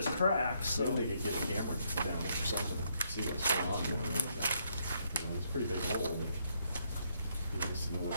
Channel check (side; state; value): both; inverted; correlation -0.74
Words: cracked, so. They could get a camera down it or something, see what's going on here. You know, it's a pretty big hole, but you just know